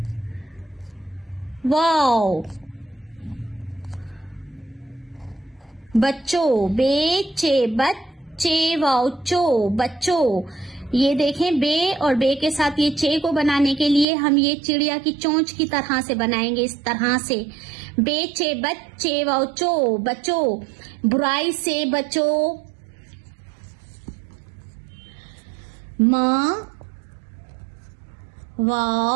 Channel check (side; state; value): left; drops out; at 14.1 s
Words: वाव बच्चों, बे चे बच्चे वाव चो बच्चों। ये देखें, बे और बे के साथ ये चे को बनाने के लिए हम ये चिड़िया की चोंच की तरह से बनाएंगे, इस तरह से। बेचे बच्चे वाव चो बचो, बुराई से बचो। माँ